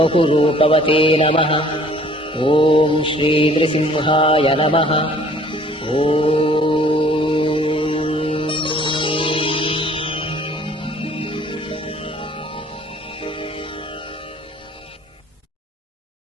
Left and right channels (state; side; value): normal; both; correlation 0.55